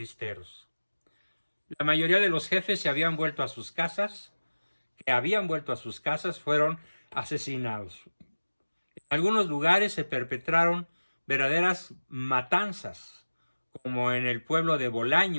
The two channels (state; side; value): inverted; both; correlation -1.00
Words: La mayoría de los jefes se habían vuelto a sus casas, fueron asesinados. En algunos lugares se perpetraron verdaderas matanzas, como en el pueblo de